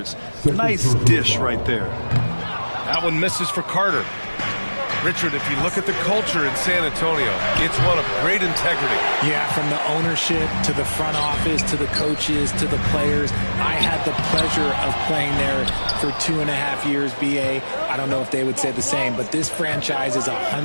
Nice dish right there. That one misses for Carter. Richard, if you look at the culture in San Antonio, it's one of great integrity. Yeah, from the ownership to the front office to the coaches to the players. I had the pleasure of playing there for 2.5 years, B.A. I don't know if they would say the same, but this franchise is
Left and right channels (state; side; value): inverted; both; correlation -1.00